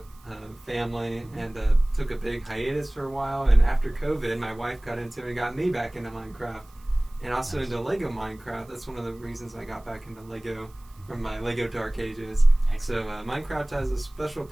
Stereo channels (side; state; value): right; noise; hiss, 29 dB below the sound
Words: family, and took a big hiatus for a while. And after COVID, my wife got into it and got me back into Minecraft, and also into LEGO Minecraft. That's one of the reasons I got back into LEGO from my LEGO Dark Ages. Excellent. So Minecraft has a special